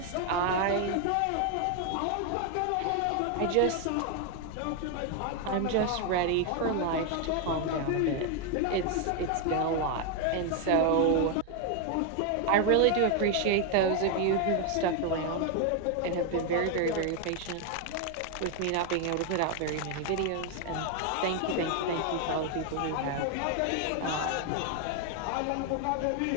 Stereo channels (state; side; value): different; both; correlation 0.01